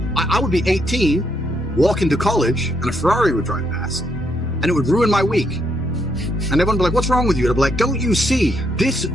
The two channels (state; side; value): normal; both; correlation 0.75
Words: I would be 18, walk into college, and a Ferrari would drive past, and it would ruin my week. And everyone would be like, what's wrong with you? I'd be like, don't you see, this